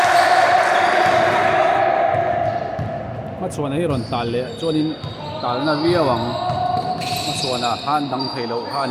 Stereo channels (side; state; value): both; identical; correlation 1.00